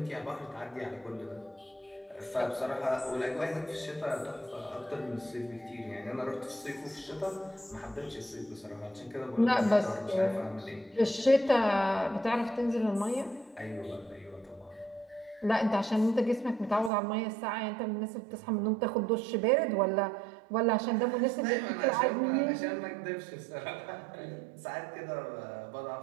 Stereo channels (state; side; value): drops out; left; at 16.9 s